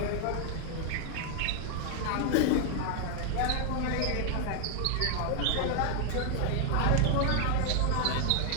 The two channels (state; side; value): different; both; correlation 0.00